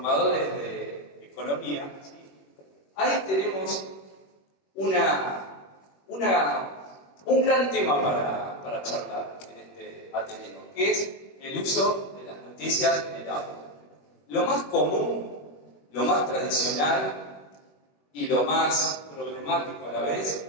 de economía, ¿sí? Ahí tenemos un gran tema para charlar en este Ateneo, que es el uso de las noticias en el aula. Lo más común, lo más tradicional y lo más problemático a la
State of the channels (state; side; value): late; right; 21 ms